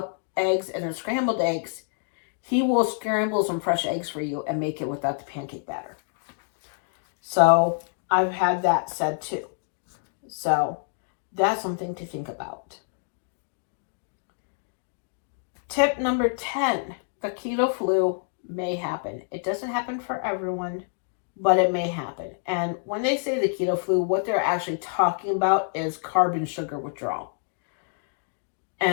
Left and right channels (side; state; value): right; silent; 60 dB below the other